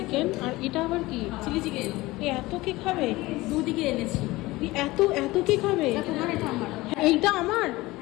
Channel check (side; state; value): right; quieter; 19.9 dB